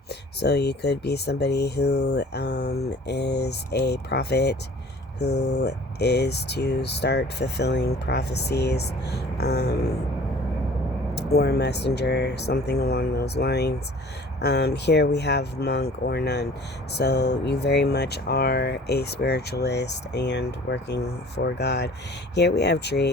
So you could be somebody who is a prophet who is to start fulfilling prophecies, or a messenger, something along those lines. Here we have monk or nun. So you very much are a spiritualist and working for God. Here we have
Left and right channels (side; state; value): both; normal; correlation 0.48